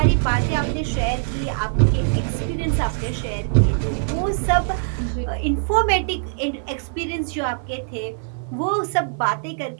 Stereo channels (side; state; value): left; silent; 57 dB below the other